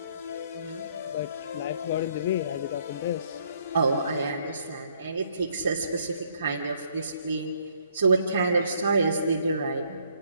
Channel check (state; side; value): inverted; both; correlation -0.66